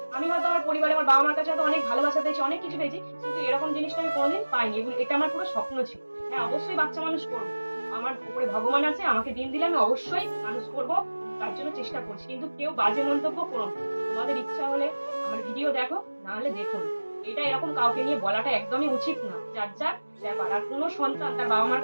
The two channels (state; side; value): inverted; both; correlation -1.00